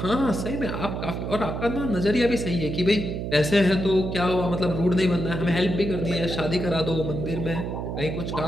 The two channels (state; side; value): noise; right; hum, 4 dB below the sound